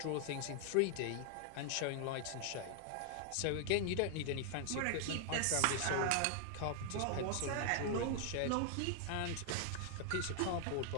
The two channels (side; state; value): both; different; correlation 0.00